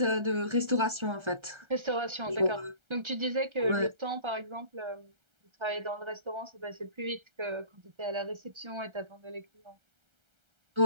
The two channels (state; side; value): late; left; 1.3 ms